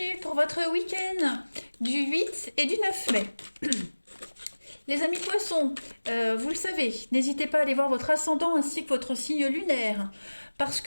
pour votre week-end du 8 et du 9 mai. Les amis poissons, vous le savez, n'hésitez pas à aller voir votre ascendant ainsi que votre signe lunaire, parce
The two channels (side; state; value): both; inverted; correlation -1.00